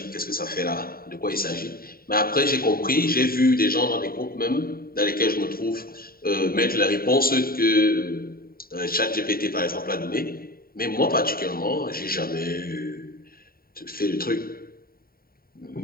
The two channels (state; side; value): late; right; 0.43 ms